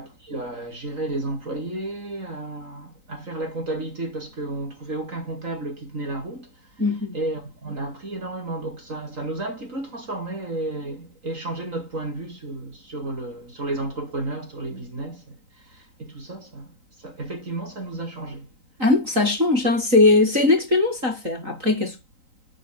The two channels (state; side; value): late; left; 3.9 ms